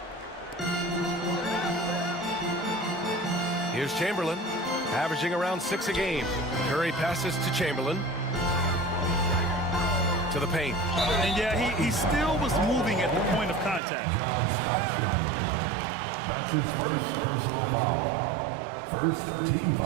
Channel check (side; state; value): left; drops out; at 13.8 s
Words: Here's Chamberlain, averaging around 6 a game. Curry passes to Chamberlain. To the paint. And yeah, he still was moving at the point of contact. John Stockton. That's his first personal foul. First team